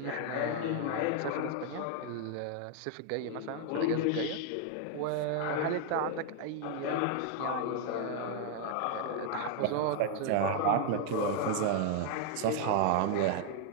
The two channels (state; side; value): different; both; correlation 0.00